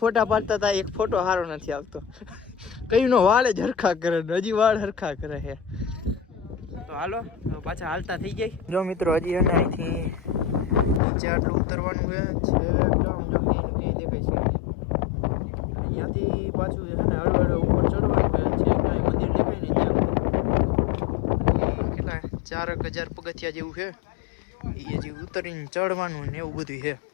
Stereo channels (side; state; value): right; drops out; at 11.0 s